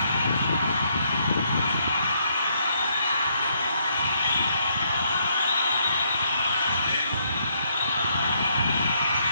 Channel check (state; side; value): inverted; both; correlation -0.72